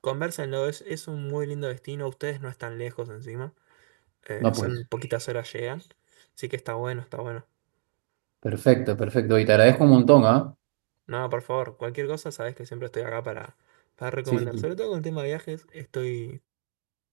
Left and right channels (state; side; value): silent; left; digital silence